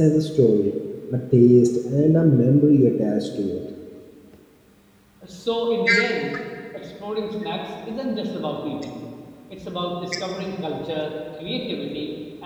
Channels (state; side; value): identical; both; correlation 1.00